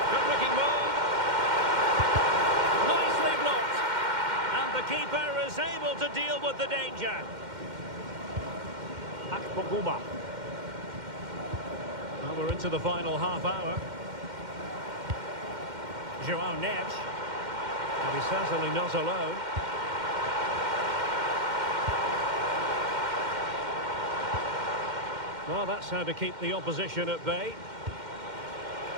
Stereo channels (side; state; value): left; late; 2.1 ms